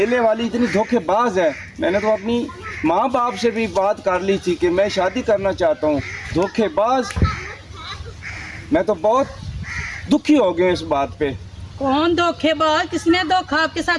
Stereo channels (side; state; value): both; identical; correlation 1.00